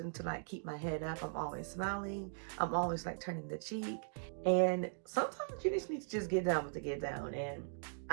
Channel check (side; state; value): left; silent; digital silence